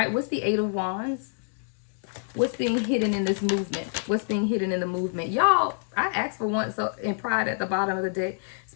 what's the Eight of Wands? What's being hidden in this movement? What's being hidden in the movement? Y'all, I asked for one in pride at the bottom of the deck.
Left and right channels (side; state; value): right; silent; digital silence